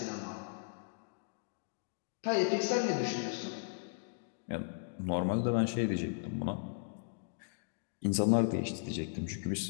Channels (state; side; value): silent; right; digital silence